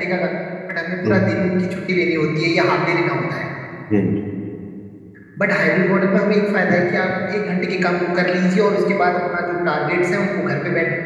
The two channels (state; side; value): identical; both; correlation 1.00